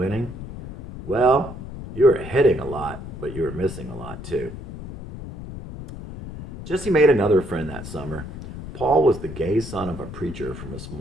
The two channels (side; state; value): left; noise; rumble, 11 dB below the sound